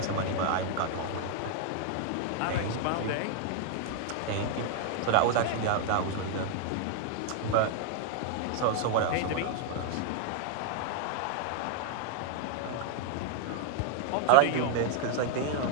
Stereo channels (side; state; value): both; different; correlation 0.00